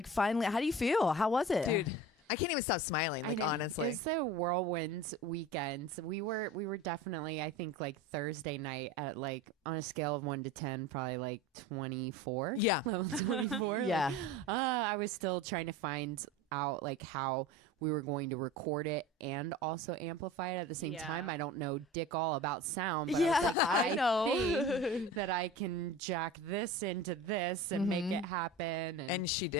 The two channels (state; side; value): normal; both; correlation 0.35